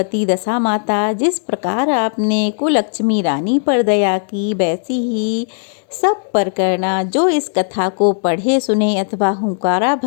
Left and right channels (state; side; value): silent; right; digital silence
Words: दशा माता, जिस प्रकार आपने कुलक्ष्मी रानी पर दया की, वैसी ही सब पर करना। जो इस कथा को पढ़े सुने अथवा हुंकारा